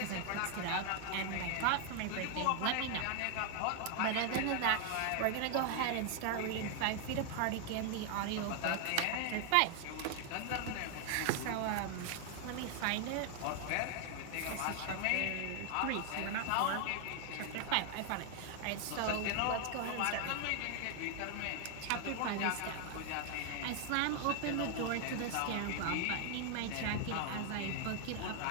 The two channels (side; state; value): both; different; correlation 0.00